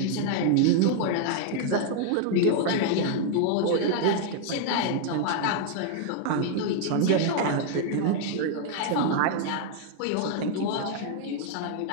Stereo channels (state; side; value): different; both; correlation 0.00